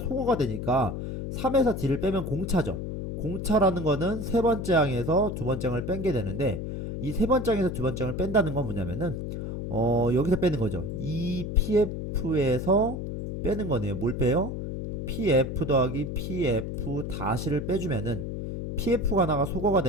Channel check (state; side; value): noise; left; hum, 5 dB below the sound